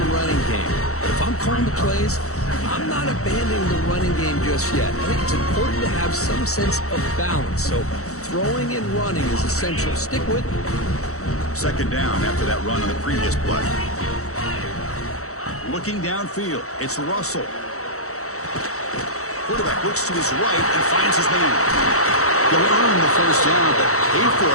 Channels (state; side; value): late; right; 0.64 ms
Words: running game. But if I'm calling the plays, I'm not abandoning the running game just yet. I think it's important to have some sense of balance. So throwing and running is essential. Stick with it. Second down after that run on the previous play. Looking downfield, it's Russell. Quarterback looks to his right and finds his man. You'll earn the first down, but pay for